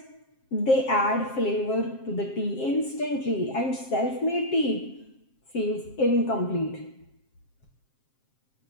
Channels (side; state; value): right; late; 7.5 ms